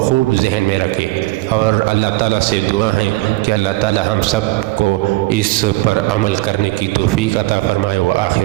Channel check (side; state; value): left; quieter; 19.9 dB